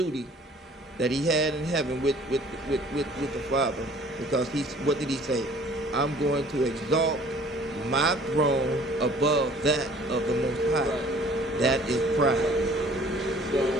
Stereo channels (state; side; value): normal; both; correlation 0.53